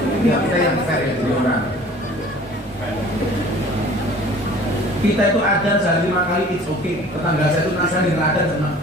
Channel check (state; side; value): normal; both; correlation 0.48